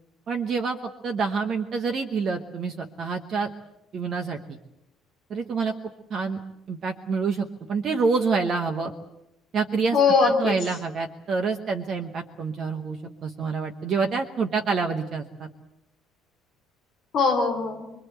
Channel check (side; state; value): both; normal; correlation 0.65